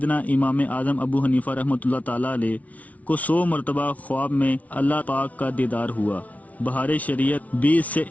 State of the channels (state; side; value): late; right; 0.069 ms